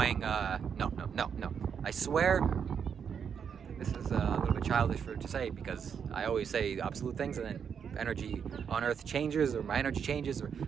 No. I swear. This is a little bit childish to say because I always say absolute things, and then energy on Earth changes, or my energy changes, or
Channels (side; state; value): left; quieter; 7.2 dB